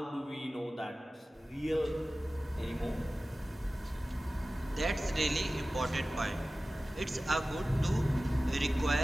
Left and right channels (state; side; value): normal; both; correlation 0.96